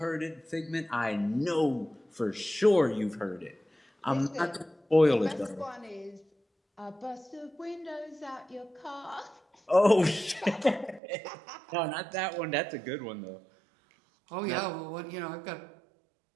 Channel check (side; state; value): left; drops out; at 11.0 s